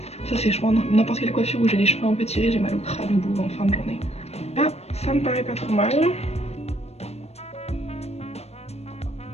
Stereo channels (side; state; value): right; late; 0.31 ms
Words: ça c'est je pense n'importe quelle coiffure où j'ai les cheveux un peu tirés, j'ai mal au crâne au bout en fin de journée. Là ça me paraît pas trop mal.